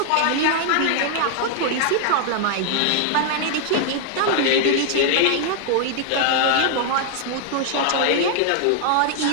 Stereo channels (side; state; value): both; different; correlation 0.00